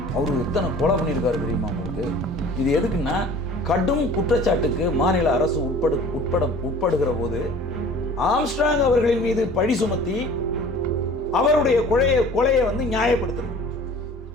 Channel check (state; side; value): normal; both; correlation 0.46